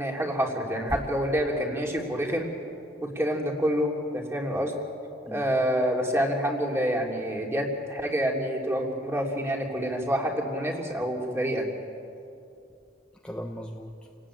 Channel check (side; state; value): both; normal; correlation 0.64